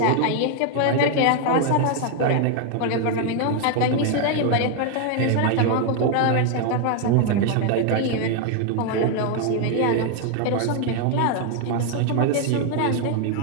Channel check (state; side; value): different; both; correlation 0.00